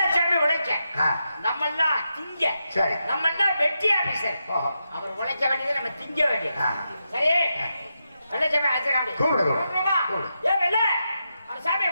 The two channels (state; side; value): inverted; both; correlation -0.86